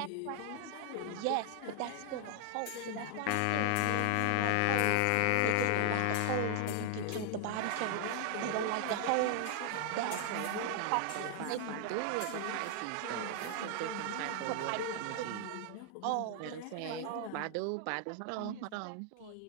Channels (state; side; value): different; both; correlation 0.00